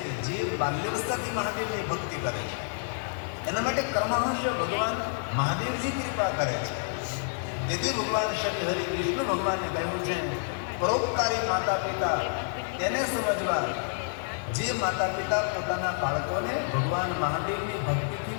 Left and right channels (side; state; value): right; silent; digital silence